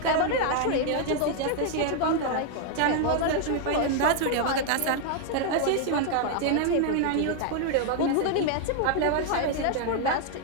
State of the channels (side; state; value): both; different; correlation 0.00